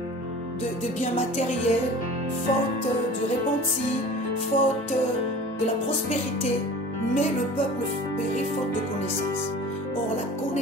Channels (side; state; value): both; normal; correlation 0.41